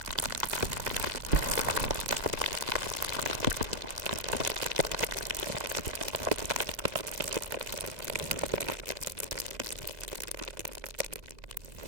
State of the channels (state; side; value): late; left; 2.0 ms